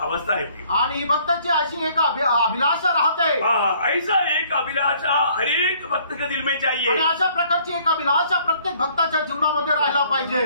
है। आणि ही भक्ताची अशी एक अभिलाषा राहते। हाँ, ऐसा एक अभिलाषा हर एक भक्त के दिल में आणि चाहिए। अशा प्रकारची एक अभिलाषा प्रत्येक भक्ताच्या जीवनामध्ये राहायला पाहिजे।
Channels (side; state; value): both; inverted; correlation -0.60